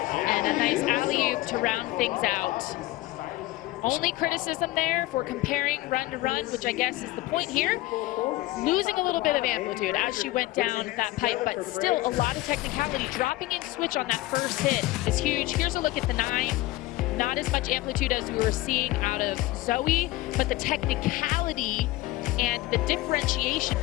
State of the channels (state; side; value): quieter; right; 18.0 dB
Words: a nice alley-oop to round things out. Only criticism there for comparing run to run, which I guess is the point here, losing a little bit of amplitude as she went down that pipe, but still a lot of technicality. Dropping in switch on that first hit is huge. Here's a look at the 9. Not as much amplitude as we were seeing out of Zoe, but the technicality and the differentiation